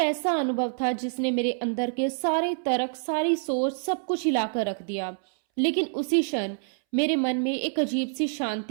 अनुभव था जिसने मेरे अंदर के सारे तर्क, सारी सोच, सब कुछ हिलाकर रख दिया। लेकिन उसी क्षण मेरे मन में एक अजीब सी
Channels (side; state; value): left; silent; 60 dB below the other